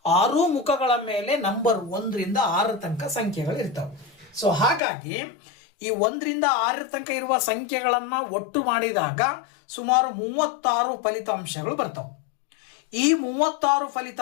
6 ಮುಖಗಳ ಮೇಲೆ ನಂಬರ್ 1 ರಿಂದ 6 ತನಕ ಸಂಖ್ಯೆಗಳು ಇರ್ತವೆ. ಸೊ ಹಾಗಾಗಿ ಈ 1 ರಿಂದ 6 ತನಕ ಇರುವ ಸಂಖ್ಯೆಗಳನ್ನ ಒಟ್ಟು ಮಾಡಿದಾಗ ಸುಮಾರು 36 ಫಲಿತಾಂಶಗಳು ಬರ್ತವೆ. ಈ 36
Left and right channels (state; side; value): drops out; right; at 4.8 s